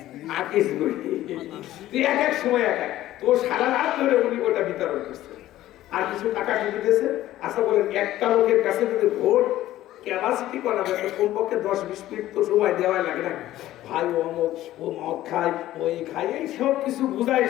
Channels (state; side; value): quieter; right; 14.4 dB